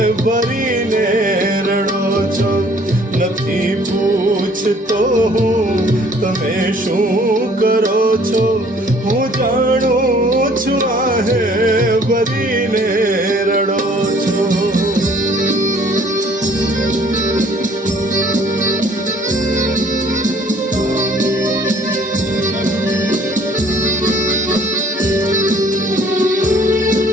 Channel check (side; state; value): both; normal; correlation 0.57